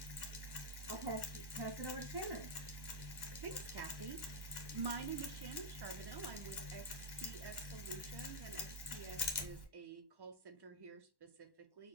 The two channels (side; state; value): left; late; 1.1 ms